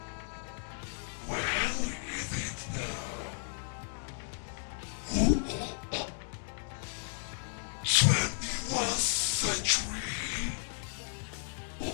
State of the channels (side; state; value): right; silent; digital silence